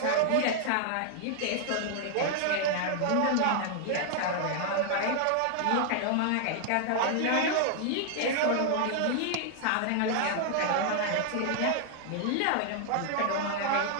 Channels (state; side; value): different; both; correlation 0.00